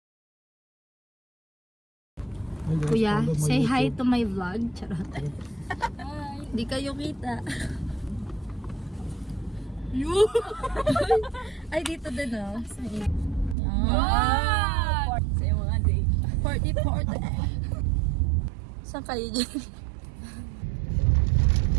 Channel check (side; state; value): left; drops out; at 13.6 s